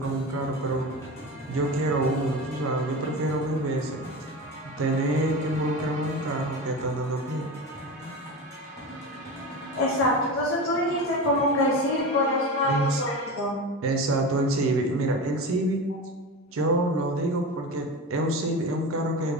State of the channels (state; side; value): normal; both; correlation 0.27